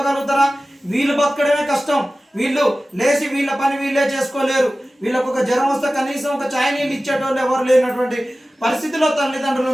వీళ్ళు బతకడమే కష్టం. వీళ్ళు లేచి వీళ్ళ పని వీళ్ళే చేసుకోలేరు. వీళ్ళకు ఒక జ్వరం వస్తే కనీసం ఒక ఛాయ్ నీళ్ళు ఇచ్చేటోళ్ళు ఎవరు లేనటువంటి పరిస్థితిలో తల్లిదండ్రులు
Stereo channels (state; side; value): normal; both; correlation 0.96